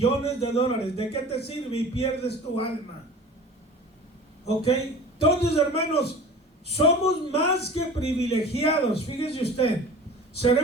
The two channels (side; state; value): both; normal; correlation 0.40